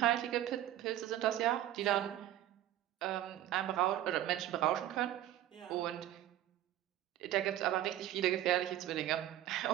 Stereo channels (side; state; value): left; quieter; 13.0 dB